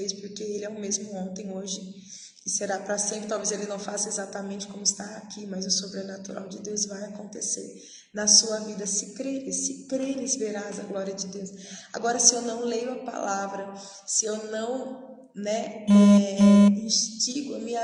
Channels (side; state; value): both; identical; correlation 1.00